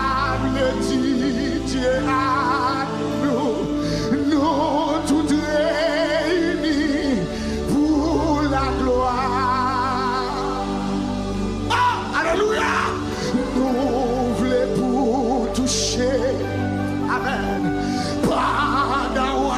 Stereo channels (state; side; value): identical; both; correlation 1.00